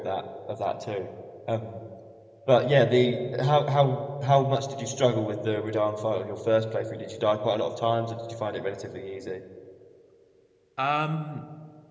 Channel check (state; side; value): identical; both; correlation 1.00